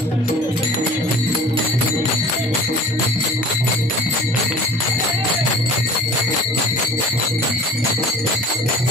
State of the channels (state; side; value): normal; both; correlation 0.45